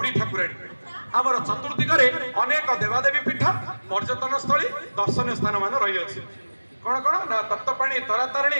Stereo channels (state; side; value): inverted; both; correlation -1.00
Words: ଠାକୁରାଣୀ ଆମର ଚତୁର୍ଦିଗରେ ଅନେକ ଦେବାଦେବୀ ପୀଠ ପର୍ଯ୍ୟଟନ ସ୍ଥଳୀ ଦର୍ଶନୀୟ ସ୍ଥାନ ମାନ ରହିଅଛି କଣ କଣ ନା ତପ୍ତ ପାଣି ତାରା ତାରିଣୀ